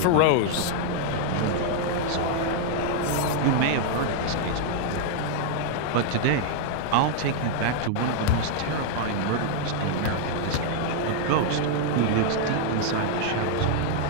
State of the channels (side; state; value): both; different; correlation 0.00